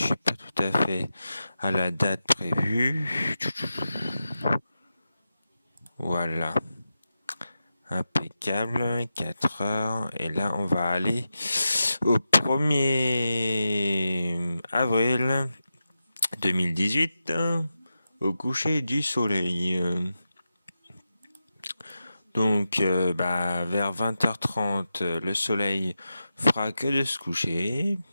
suis pas tout à fait à la date prévue. Voilà. Impeccable. 4 heures. Et là, on va aller au 1er avril 2018 au coucher du soleil. Donc, vers 20h30, le soleil fera que de se coucher.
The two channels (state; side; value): inverted; both; correlation -0.91